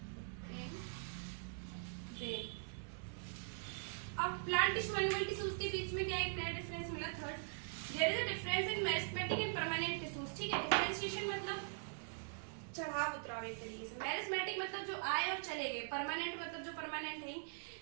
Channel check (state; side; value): silent; left; digital silence